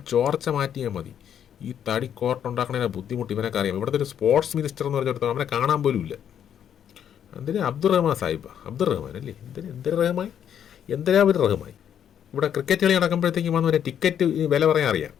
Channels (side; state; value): right; quieter; 9.2 dB